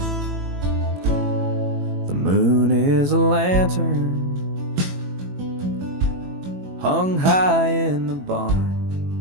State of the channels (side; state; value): left; late; 21 ms